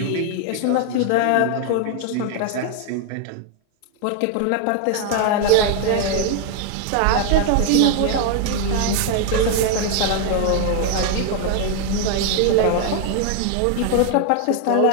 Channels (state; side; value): different; both; correlation 0.00